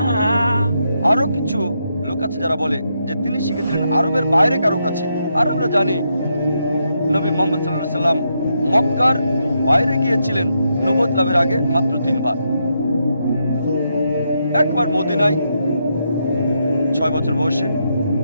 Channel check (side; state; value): both; inverted; correlation -0.81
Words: আরো কিছু লোক আছে যারা বলে যে তিনি শিখেছিলেন আরবের বাইরে কারো কাছে। আর আমরা জানি নবী মুহাম্মদ সাল্লাল্লাহু আলাইহি সাল্লাম মক্কার বাইরে গিয়েছিলেন নবুয়ত লাভের আগে মাত্র 3 বার। একবার মদিনায় 6 বছর বয়সে,